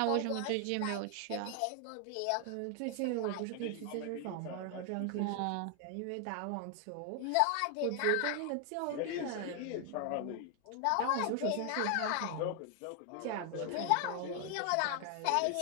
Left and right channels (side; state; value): both; different; correlation 0.00